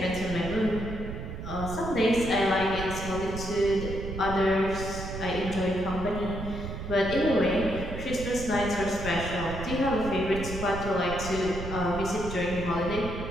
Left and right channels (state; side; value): noise; right; rumble, 7 dB below the sound